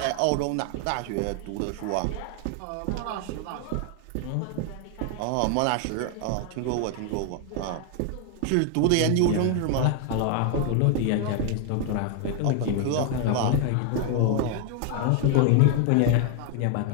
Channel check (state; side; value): different; both; correlation 0.01